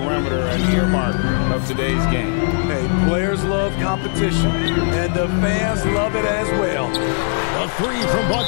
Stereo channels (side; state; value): right; silent; 67 dB below the other